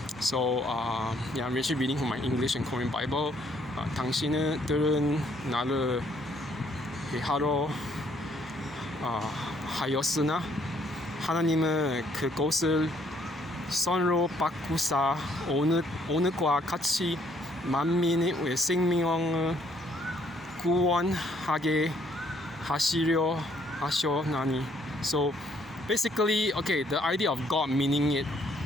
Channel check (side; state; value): both; normal; correlation 0.67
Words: So I'm actually reading from my English and Korean Bible. 당신들은 나를 하러 하였으나 하나님은 그것을 선으로 바꾸사 오늘과 같이 만민의 생명을 구원하게 하시려 하셨나니. So basically, the idea of God meaning it